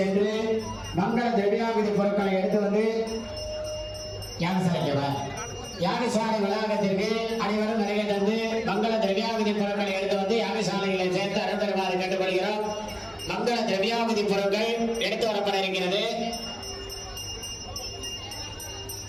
சென்று மங்கள திரவியாவதி பொருட்களை எடுத்து வந்து யாகசாலை வளாகத்திற்கு அனைவரும் வருகை தந்து மங்கள திரவியாவதி பொருட்களை எடுத்து வந்து யாகசாலைகளை சேர்த்து அருள் பெறுமாறு கேட்டுக்கொள்கிறோம். மங்கள திரவியாவதி பொருட்கள் எடுத்து வரப்பட இருக்கிறது.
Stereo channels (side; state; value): both; identical; correlation 1.00